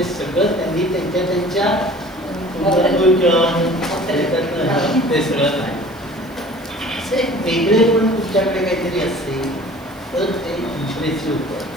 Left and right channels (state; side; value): noise; right; hiss, 28 dB below the sound